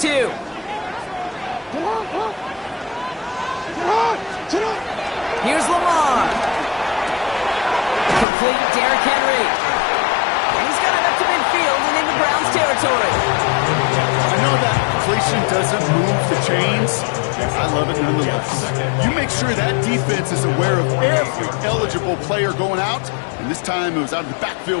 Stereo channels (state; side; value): drops out; right; at 8.2 s